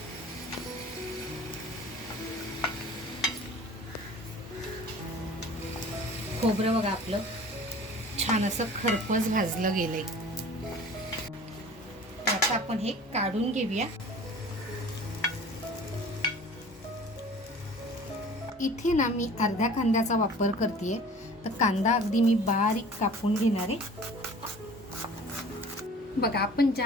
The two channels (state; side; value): normal; both; correlation 0.44